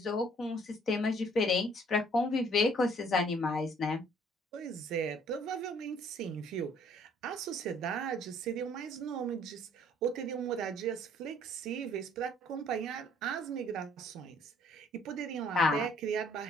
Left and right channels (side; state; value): both; normal; correlation 0.59